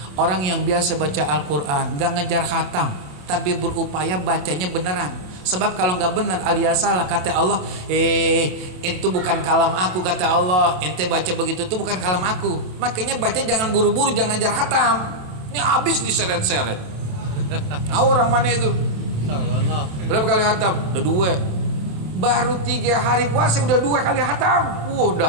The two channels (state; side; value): late; left; 27 ms